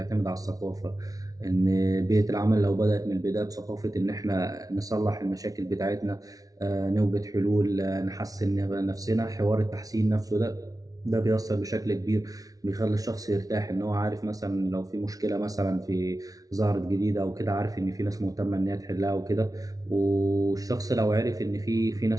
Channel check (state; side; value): late; left; 0.18 ms